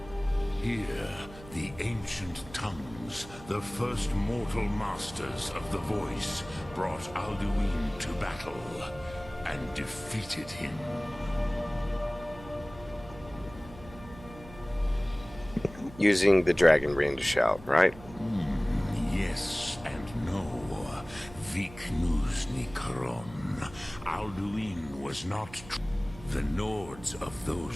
Here, the ancient tongues, the first mortal masters of the voice, brought Alduin to battle and defeated him. Using the dragon ring to shout, right? Yes and no. Viknus Nikaron. Alduin was not the Nords of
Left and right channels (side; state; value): right; noise; hum, 17 dB below the sound